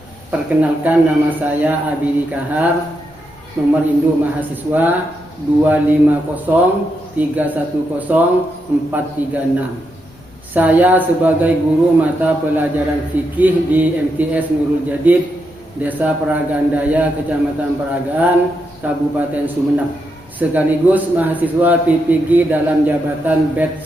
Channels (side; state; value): both; normal; correlation 0.83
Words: Perkenalkan, nama saya Abidi Kahar, nomor induk mahasiswa 250310436. Saya sebagai guru mata pelajaran fikih di MTS Nurul Jadid, Desa Peragandaya, Kecamatan Peragaan, Kabupaten Sumeneb, sekaligus mahasiswa PPG dalam jabatan BED